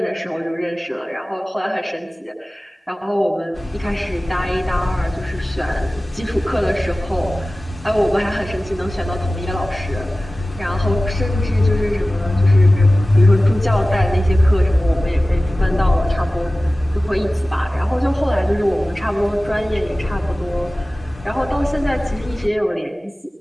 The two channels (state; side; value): normal; both; correlation 0.97